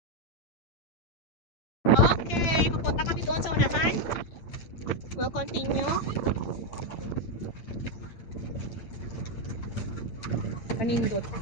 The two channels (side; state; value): right; late; 8.8 ms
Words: Okay, pupunta kami doon sa unahan. We'll continue. Panindot.